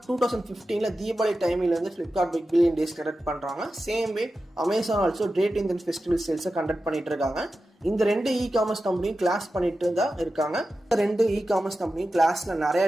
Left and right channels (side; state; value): both; normal; correlation 0.92